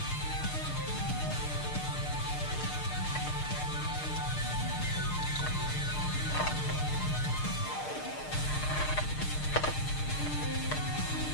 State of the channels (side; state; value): right; late; 6.6 ms